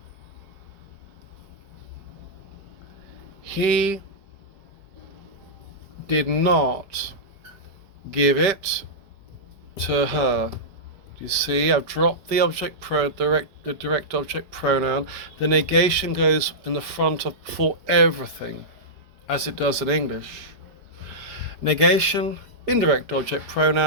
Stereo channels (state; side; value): late; left; 4.9 ms